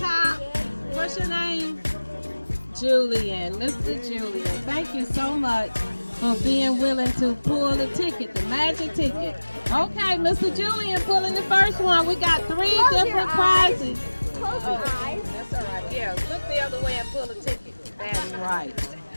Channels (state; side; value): inverted; both; correlation -1.00